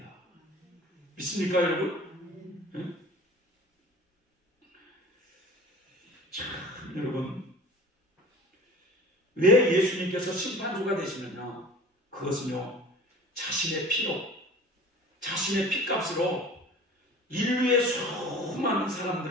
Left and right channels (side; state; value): both; normal; correlation 0.42